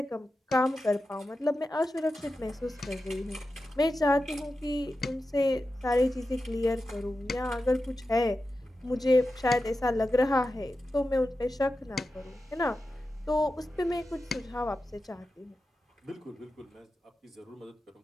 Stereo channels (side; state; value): both; normal; correlation 0.91